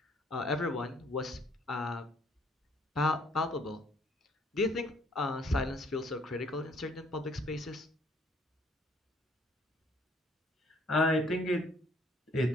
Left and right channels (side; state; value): both; normal; correlation 0.62